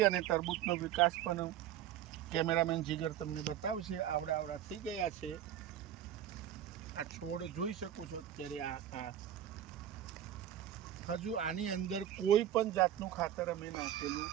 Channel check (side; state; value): left; quieter; 11.0 dB